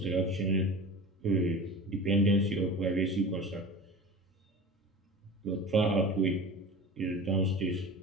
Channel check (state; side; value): normal; both; correlation 0.34